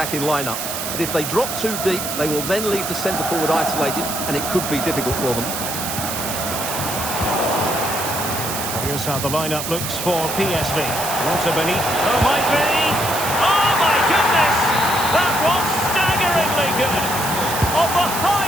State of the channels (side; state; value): right; noise; hiss, 5 dB below the sound